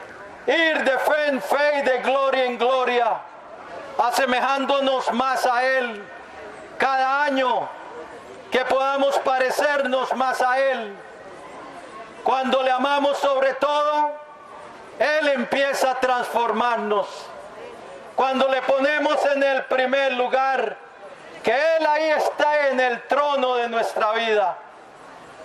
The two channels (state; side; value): identical; both; correlation 1.00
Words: ir de fe en fe y de gloria en gloria, asemejándonos más a Él cada año, que podamos parecernos más a Él. Cuando le amamos sobre todo, Él empieza a transformarnos. Cuando le ponemos en el primer lugar, que Él ahí está en el trono de nuestra vida.